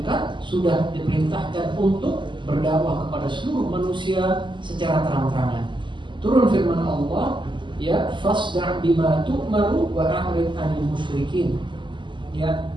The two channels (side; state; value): left; late; 0.23 ms